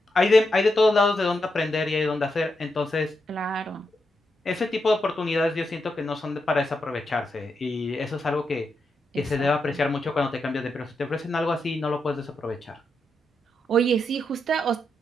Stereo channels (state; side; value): normal; both; correlation 0.84